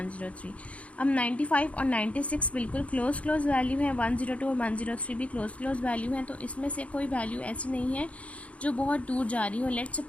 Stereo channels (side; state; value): right; late; 0.064 ms